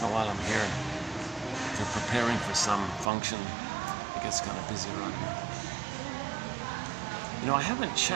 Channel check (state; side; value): drops out; left; at 3.1 s